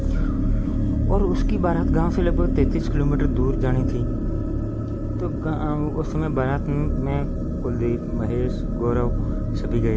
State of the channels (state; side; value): identical; both; correlation 1.00